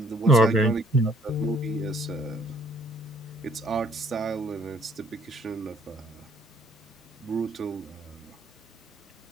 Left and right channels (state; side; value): normal; both; correlation 0.61